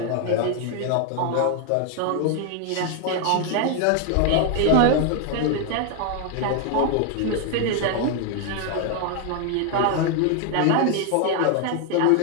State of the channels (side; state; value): both; different; correlation 0.01